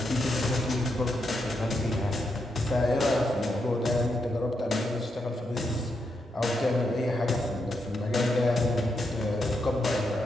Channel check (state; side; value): normal; both; correlation 0.82